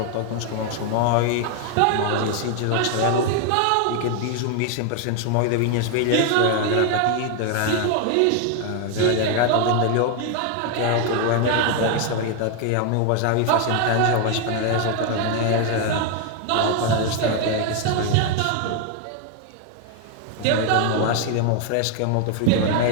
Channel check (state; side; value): different; both; correlation 0.01